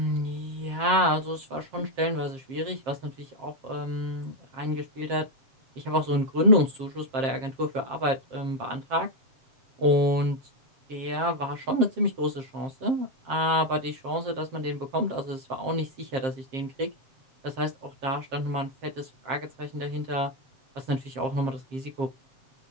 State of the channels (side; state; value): left; late; 7.5 ms